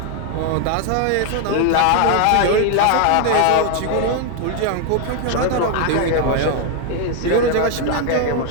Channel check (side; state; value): both; different; correlation 0.00